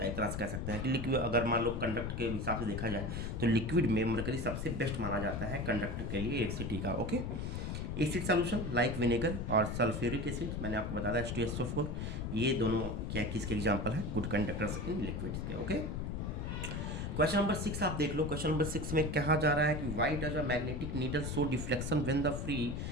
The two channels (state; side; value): noise; left; rumble, 3 dB below the sound